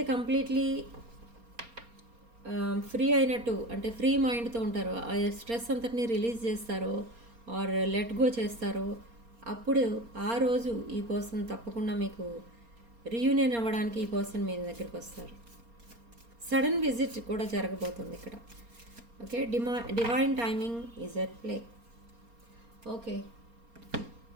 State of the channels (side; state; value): left; late; 4.3 ms